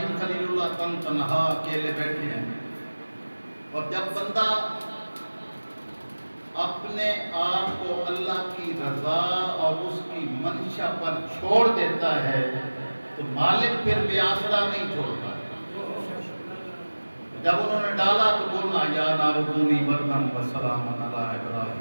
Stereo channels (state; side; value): inverted; both; correlation -1.00